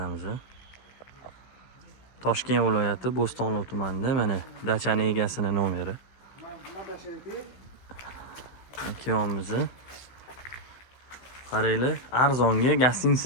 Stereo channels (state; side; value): late; right; 16 ms